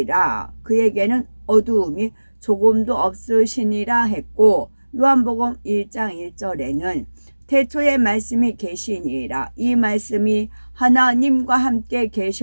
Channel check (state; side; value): inverted; both; correlation -1.00